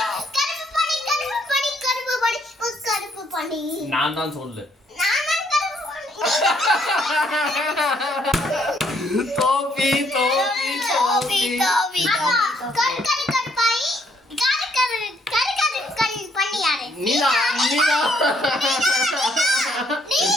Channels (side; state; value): both; normal; correlation 0.69